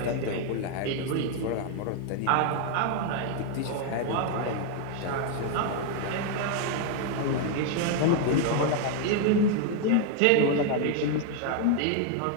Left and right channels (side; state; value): both; different; correlation 0.00